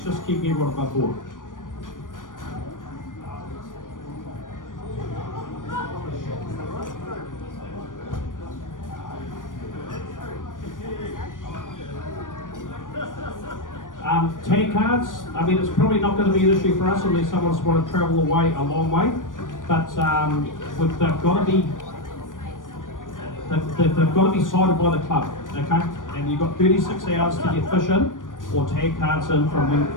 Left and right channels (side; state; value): right; late; 0.88 ms